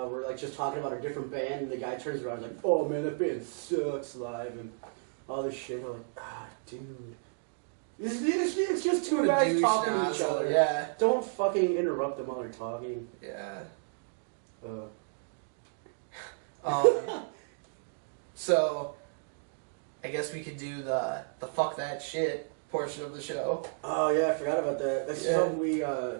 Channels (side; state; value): left; silent; digital silence